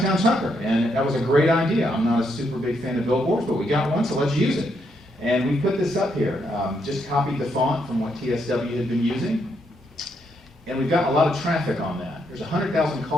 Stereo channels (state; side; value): normal; both; correlation 0.77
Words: Tucker, and that was a great idea. I'm not a super big fan of billboards, but we got one, so let's use it. And we put this up here, just copied the font from what TSW had been using, and we've gotten a lot of traffic on that. There's 100,000